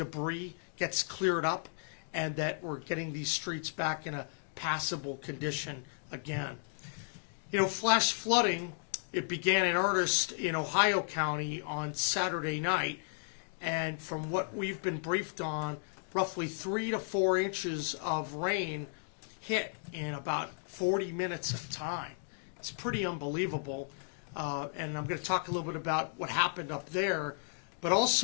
gets cleared up and that we're getting these streets back in a passable condition again. You know, flash flooding, it began in earnest in Ohio County on Saturday night, and from what we've been briefed on, roughly 3 to 4 inches of rain hit in about 40 minutes of time. It's pretty unbelievable, and I'm going to talk a little bit about what happened up there, but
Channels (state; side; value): silent; right; digital silence